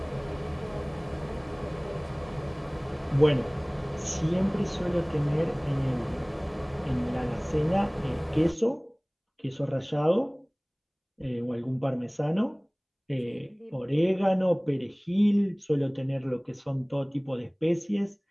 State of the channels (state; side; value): identical; both; correlation 1.00